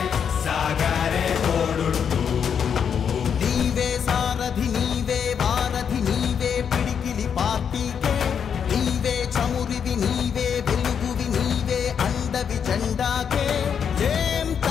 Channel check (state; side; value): quieter; right; 7.4 dB